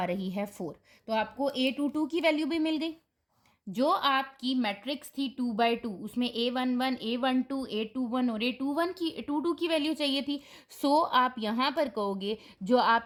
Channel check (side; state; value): both; identical; correlation 1.00